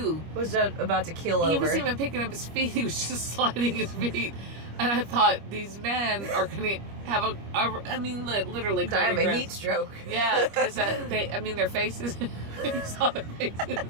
Was about to keel over. He wasn't even picking up his feet; he was just sliding his feet. And I thought, these men are going to have literally die of a cardiac heat stroke. Yeah, because their faces. You saw their faces.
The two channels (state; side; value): late; left; 25 ms